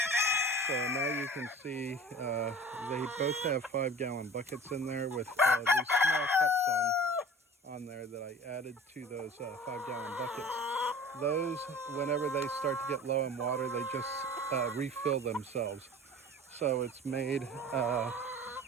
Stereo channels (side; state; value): both; normal; correlation 0.41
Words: So now you can see they both have 5-gallon buckets in there with these small cups on there that I added to those 5-gallon buckets. Those, whenever they start to get low in water, they just refill themselves. So it's made